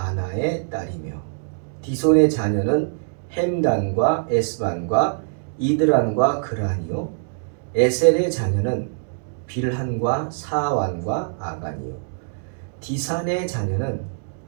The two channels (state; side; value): silent; left; digital silence